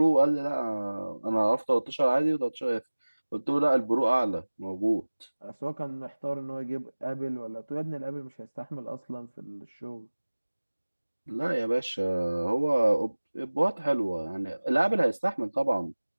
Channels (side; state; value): both; inverted; correlation -1.00